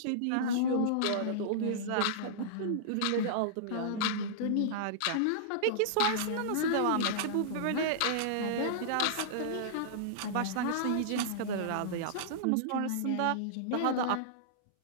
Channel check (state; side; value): different; both; correlation -0.02